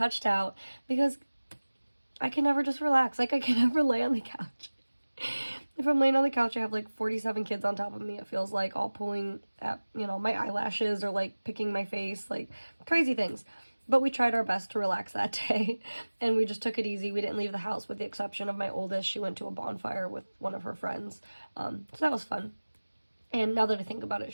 out. Because I can never just relax. Like, I can never lay on the couch. If I'm laying on the couch, I have, like, 47 kids on top of me. It feels like all pulling at, my eyelashes or, like, picking my face. Like, crazy things. But we tried our best to relax that day, and we just took it easy. We didn't leave the house with the exception of my oldest. She went to a bonfire with one of her friends, so that was fun. And now that I think about it,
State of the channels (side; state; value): both; inverted; correlation -1.00